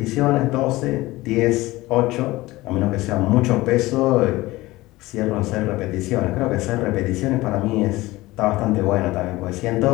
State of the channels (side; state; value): right; quieter; 19.1 dB